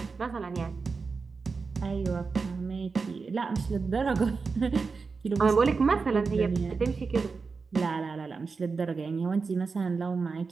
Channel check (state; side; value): quieter; left; 4.7 dB